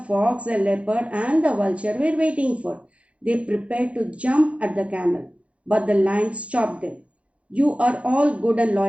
fox, the leopard, and the vulture were waiting for. They prepared to jump at the camel, but the lion stopped them. You are all good and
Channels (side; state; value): left; late; 0.063 ms